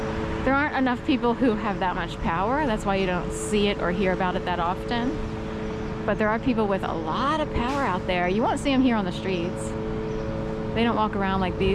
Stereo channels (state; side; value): identical; both; correlation 1.00